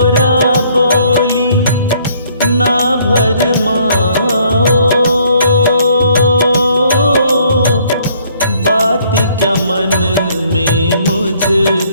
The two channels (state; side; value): inverted; both; correlation -0.63